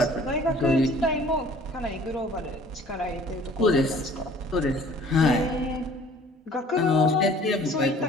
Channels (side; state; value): both; normal; correlation 0.52